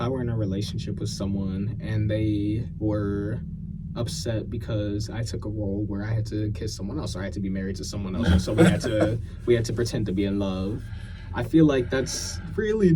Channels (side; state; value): both; identical; correlation 1.00